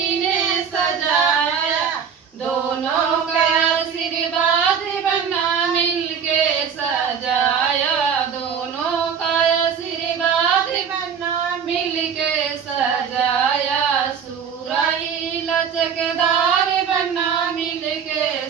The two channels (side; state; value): left; quieter; 7.2 dB